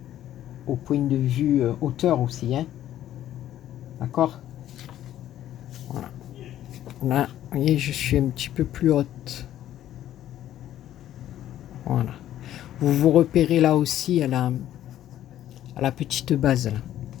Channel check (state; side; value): quieter; right; 12.2 dB